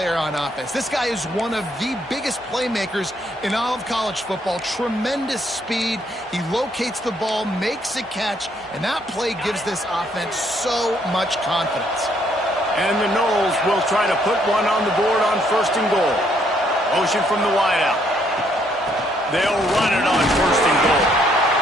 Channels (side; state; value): both; normal; correlation 0.69